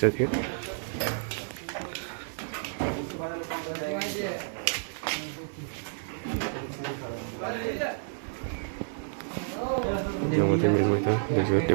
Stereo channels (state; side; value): silent; left; digital silence